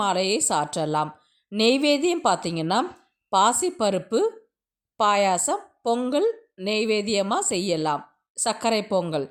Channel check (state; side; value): identical; both; correlation 1.00